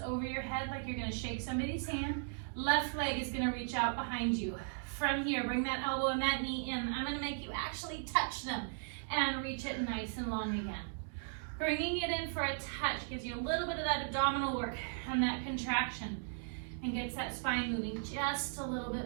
over your head like you're going to shake somebody's hand. Left leg is going to reach out behind you. From here, bring that elbow and that knee in. I'm going to make you actually touch them and reach it nice and long again. Bringing it in for a touch gives you a little bit of that abdominal work and that contraction and gets that spine moving just a little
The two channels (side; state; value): left; silent; digital silence